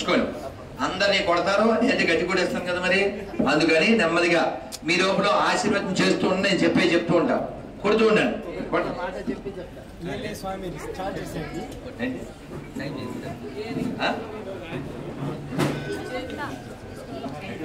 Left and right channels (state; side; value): identical; both; correlation 1.00